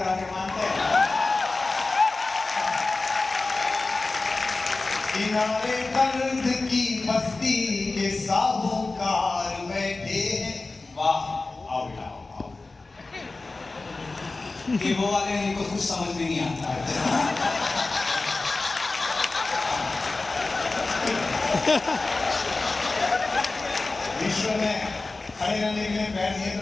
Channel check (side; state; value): right; quieter; 3.5 dB